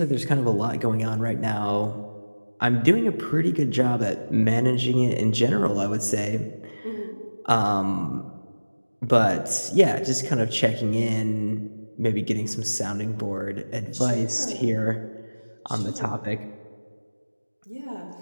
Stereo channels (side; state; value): both; inverted; correlation -1.00